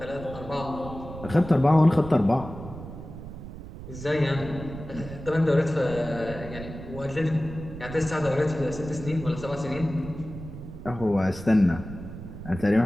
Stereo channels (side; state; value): right; noise; rumble, 12 dB below the sound